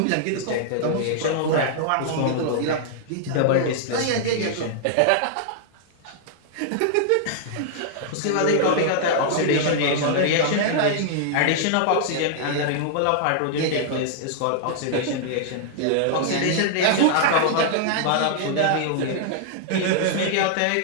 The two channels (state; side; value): different; both; correlation -0.01